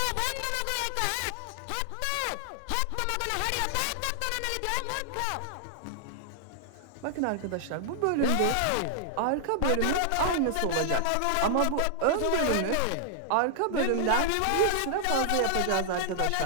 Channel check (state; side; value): different; both; correlation 0.00